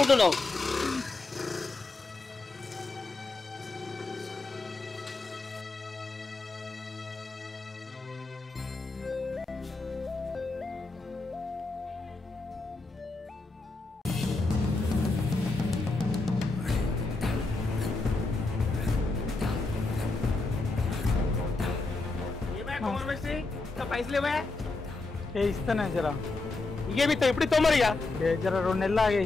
పైసలు ఇస్తానే జర. ఇకేమిస్తా ఇప్పుడు ఇస్తావు మరి. జర 2 నెలలు ఆగే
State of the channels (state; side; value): quieter; right; 3.4 dB